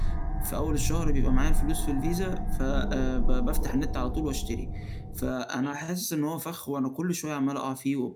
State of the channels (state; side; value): identical; both; correlation 1.00